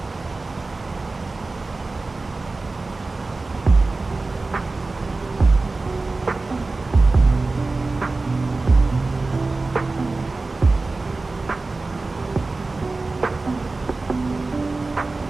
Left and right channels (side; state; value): left; quieter; 3.5 dB